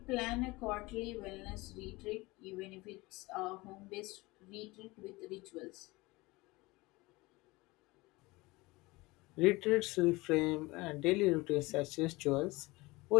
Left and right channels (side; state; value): right; quieter; 22.2 dB